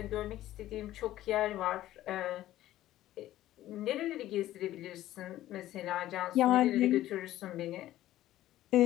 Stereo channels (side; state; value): right; quieter; 14.2 dB